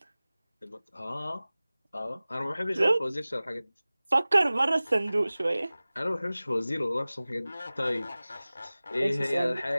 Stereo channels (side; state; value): both; inverted; correlation -0.98